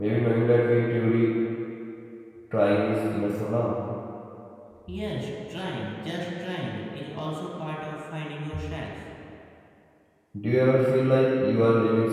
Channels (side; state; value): both; identical; correlation 1.00